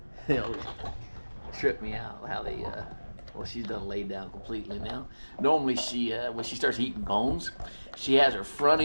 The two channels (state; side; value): inverted; both; correlation -1.00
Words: They'll trip me out how they. Well, she's done laid down completely now. Normally, she when she starts eating bones, she has her front